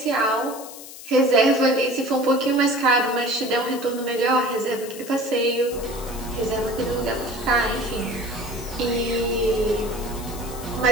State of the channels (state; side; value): noise; left; hiss, 14 dB below the sound